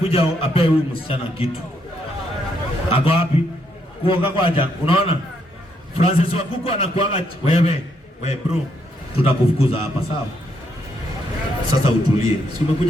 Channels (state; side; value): normal; both; correlation 0.75